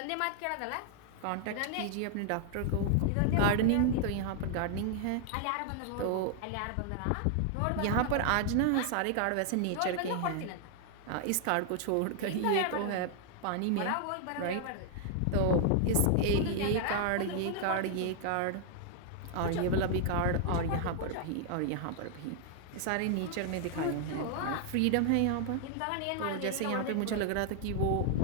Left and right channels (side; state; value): both; different; correlation 0.00